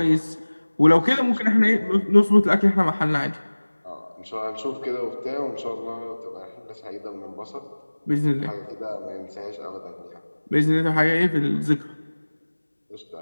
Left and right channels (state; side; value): inverted; both; correlation -1.00